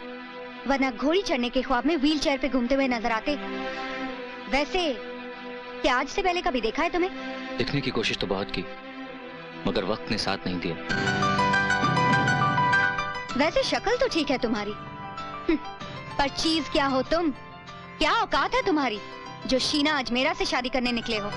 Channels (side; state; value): both; identical; correlation 1.00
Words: वरना घोड़ी चढ़ने के ख्वाब में व्हील चेयर पे घूमते हुए नजर आते। वैसे क्या आज से पहले कभी देखा है तुम्हें? दिखने की कोशिश तो बहुत की, मगर वक्त ने साथ नहीं दिया। वैसे शक्ल तो ठीक है तुम्हारी, पर चीज क्या हो तुम? क्या औकात है तुम्हारी जो शीना अजमेरा से शादी करने निकले हो?